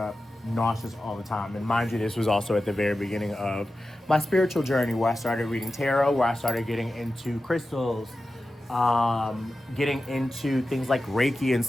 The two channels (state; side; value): normal; both; correlation 0.93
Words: nauseous all the time. And mind you, this was also at the very beginning of my spiritual journey, where I started reading tarot, where I started getting into crystals, getting into things like Reiki and